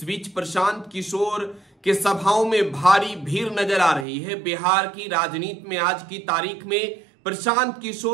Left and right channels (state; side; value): drops out; left; at 4.0 s